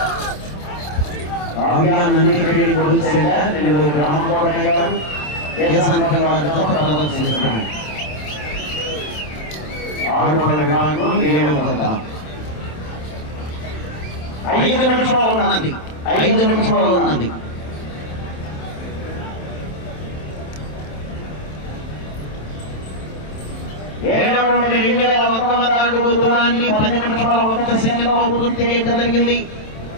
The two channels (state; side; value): late; right; 27 ms